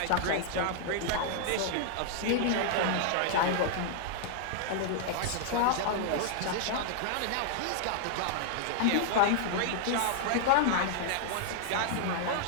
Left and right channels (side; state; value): both; different; correlation -0.01